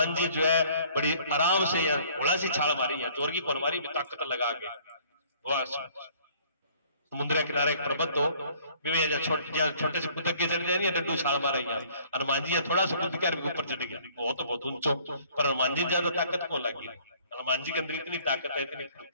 जी जो है बड़ी आराम से थोड़ा सी छाल मारी है, जोर की कौन मारी, ताकत लगा के। समुद्र के किनारे एक पर्वत हो, छोटे से कुदक के चढ़ जाए, डंडू छाल मारा। हनुमान जी थोड़ा सा कूद के ऊपर चढ़ गया, वो तो बहुत ऊंचो, पर हनुमान जी ज्यादा ताकत को लगी। हनुमान जी के अंदर इतनी ताकत है, इतनी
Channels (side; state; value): both; inverted; correlation -0.57